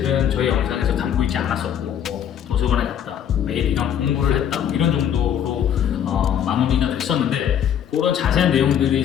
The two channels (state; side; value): quieter; right; 9.3 dB